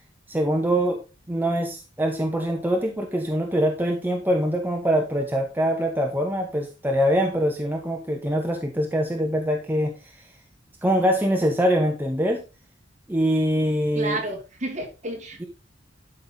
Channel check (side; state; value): both; normal; correlation 0.72